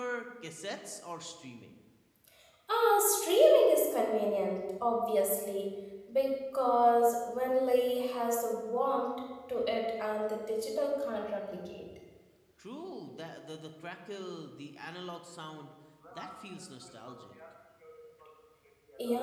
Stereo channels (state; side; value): identical; both; correlation 1.00